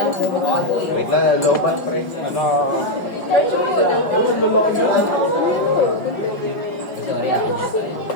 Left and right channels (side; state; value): right; late; 5.3 ms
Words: Wait lang, lobat pre. Ano? Sorry, ako.